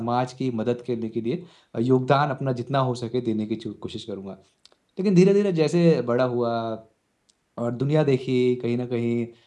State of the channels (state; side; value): identical; both; correlation 1.00